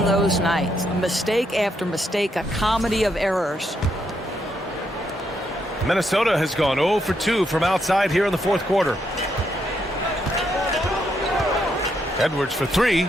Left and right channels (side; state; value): both; normal; correlation 0.77